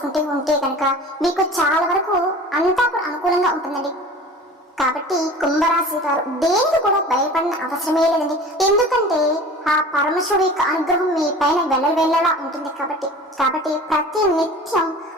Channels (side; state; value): both; normal; correlation 0.40